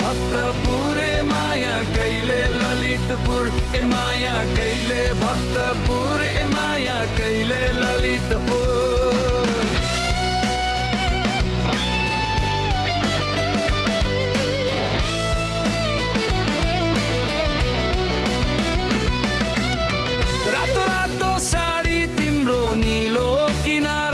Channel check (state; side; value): identical; both; correlation 1.00